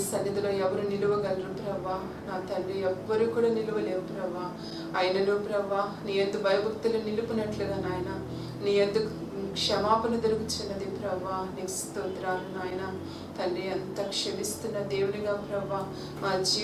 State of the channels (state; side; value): identical; both; correlation 1.00